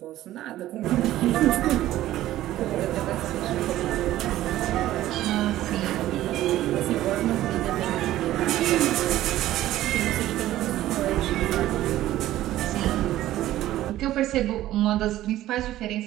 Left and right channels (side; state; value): left; quieter; 14.4 dB